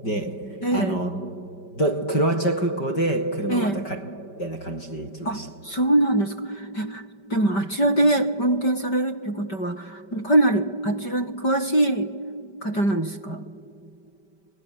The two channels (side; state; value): right; late; 5.2 ms